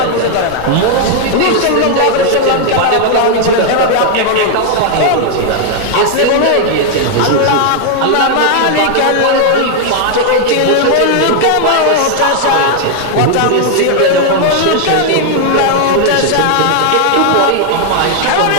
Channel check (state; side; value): different; both; correlation 0.00